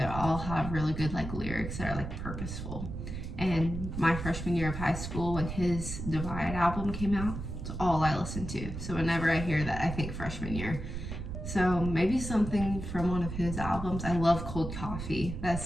all have really good like lyrics that are like purposeful. And my freshman year of high school, when his Divide album came out, it's all I listened to. So whenever I hear that, I think freshman year. So maybe something from one of his albums. I love Cold Coffee.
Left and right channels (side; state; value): right; noise; rumble, 6 dB below the sound